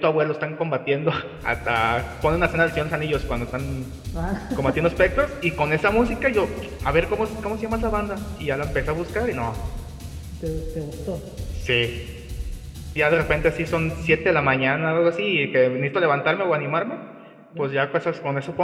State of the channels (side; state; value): both; identical; correlation 1.00